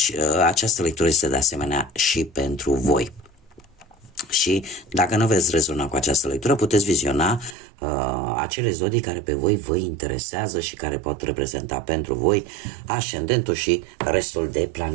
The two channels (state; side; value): drops out; left; at 7.6 s